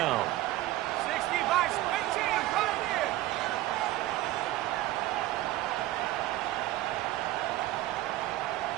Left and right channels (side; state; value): left; quieter; 16.1 dB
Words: 60 by 18, right here.